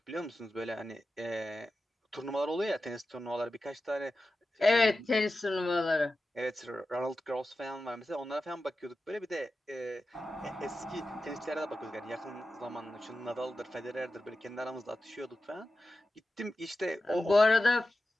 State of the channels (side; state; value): both; normal; correlation 0.93